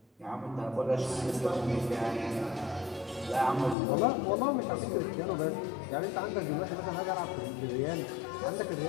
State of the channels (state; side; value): drops out; right; at 3.8 s